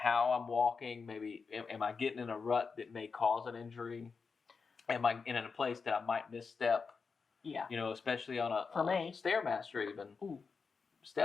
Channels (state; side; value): quieter; right; 5.1 dB